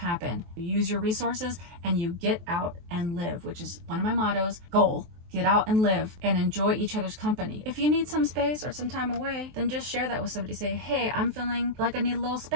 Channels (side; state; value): left; late; 23 ms